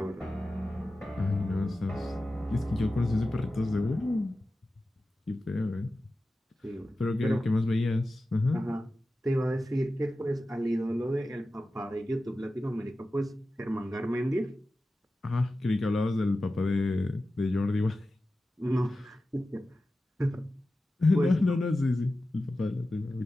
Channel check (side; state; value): both; normal; correlation 0.94